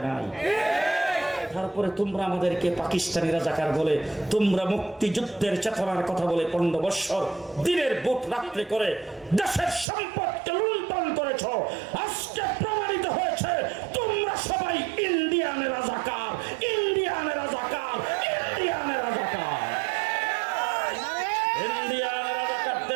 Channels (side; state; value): left; drops out; at 9.9 s